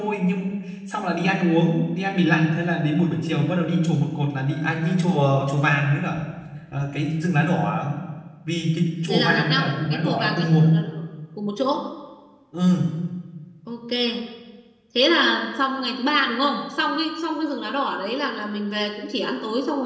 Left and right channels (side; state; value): both; identical; correlation 1.00